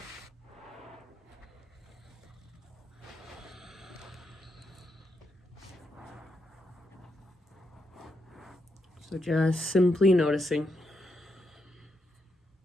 So just simply noticing.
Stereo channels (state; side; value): normal; both; correlation 0.82